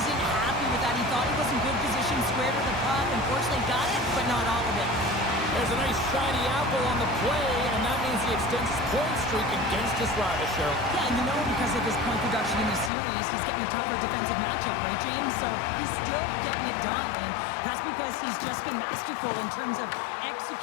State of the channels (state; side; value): drops out; right; at 12.9 s